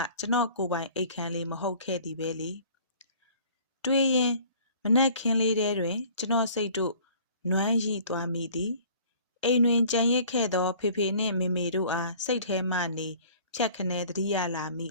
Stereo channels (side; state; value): both; inverted; correlation -0.51